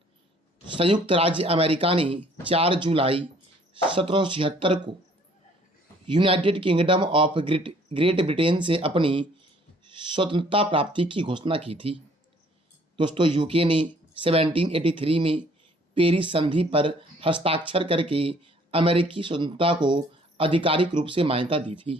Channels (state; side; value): normal; both; correlation 0.59